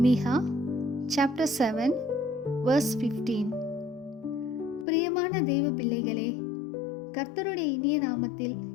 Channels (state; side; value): drops out; right; at 4.9 s